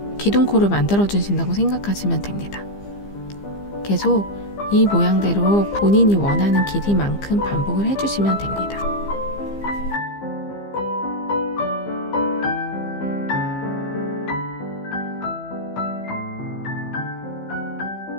기둥코를 만들어 주신다고 생각하시면 됩니다. 계속 이 모양대로 본인이 원하는 길이만큼 반복을 해주시면 됩니다.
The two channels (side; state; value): right; late; 15 ms